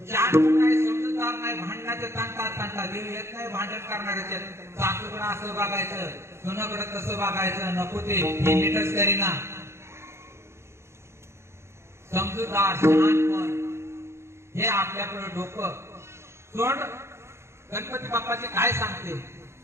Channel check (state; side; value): late; left; 0.13 ms